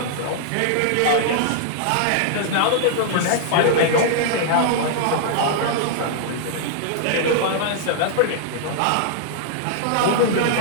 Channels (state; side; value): different; both; correlation -0.01